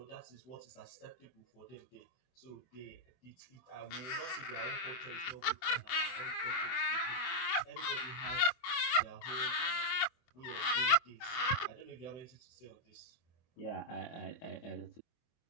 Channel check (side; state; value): right; late; 24 ms